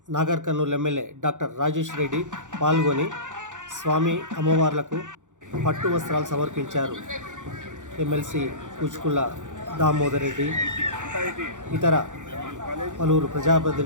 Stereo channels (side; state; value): left; late; 0.86 ms